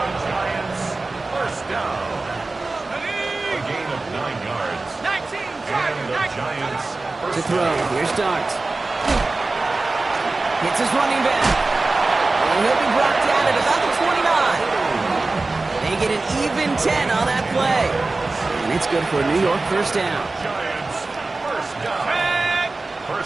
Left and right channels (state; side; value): quieter; left; 3.4 dB